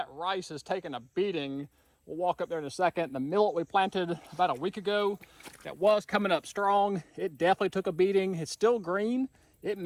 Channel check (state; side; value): identical; both; correlation 1.00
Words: rice is taking a beating. We'll walk up there in a second. The millet we planted about a week ago that was coming up strong, it definitely took a beating. It's still green. It